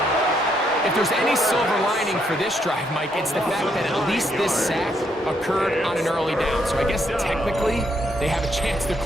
If there's any silver lining for this drive, Mike, it's the fact that at least this sack occurred on an early down. So I guess technically they have a chance to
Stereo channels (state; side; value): normal; both; correlation 0.74